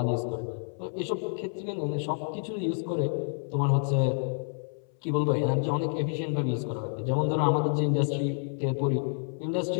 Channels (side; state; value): right; silent; 59 dB below the other